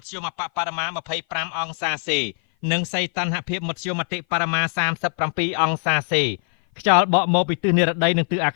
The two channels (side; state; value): right; silent; 56 dB below the other